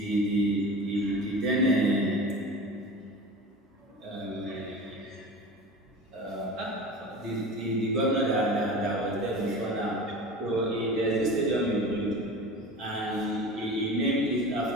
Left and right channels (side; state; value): both; normal; correlation 0.34